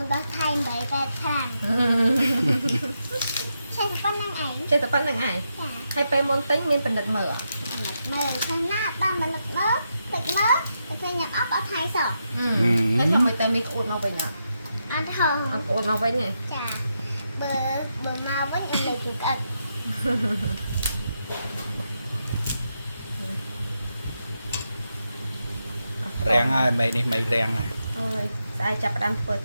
ដល់ថៃ8 8ខាងចេះតែប៉ុណ្្នឹងឯងហើយពេលមុនទិញមានបណ្ឌិតមើលខាងណាបានបណ្ឌិតមើលទឹកមើលតែពេលញ៉ាំអត់អត់ថៃសោះតែថាមិនតែមីក្អួតមកវិញអត់ហងអត់ក្អួតមកវិញទេចាបើមកវិញអីលេខក្អិត rèn ai mày này mày rèn này អើយស្អែកចាប់ផ្ដើមធ្វើ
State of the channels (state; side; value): inverted; both; correlation -0.84